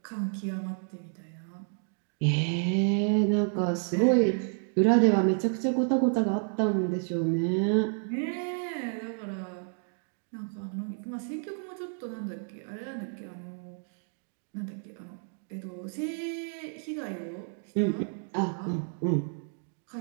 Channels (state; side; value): silent; left; 58 dB below the other